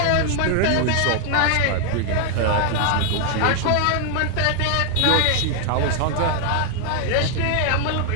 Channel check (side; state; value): both; different; correlation 0.00